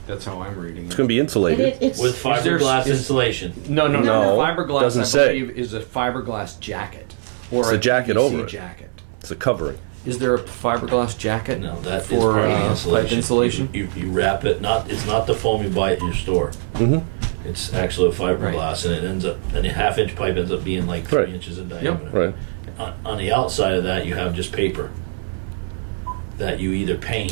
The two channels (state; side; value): silent; left; 62 dB below the other